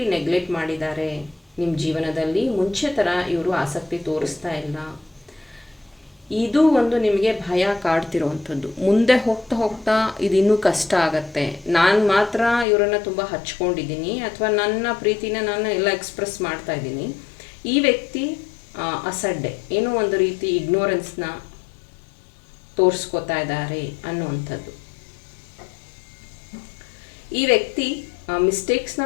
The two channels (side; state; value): right; drops out; at 12.7 s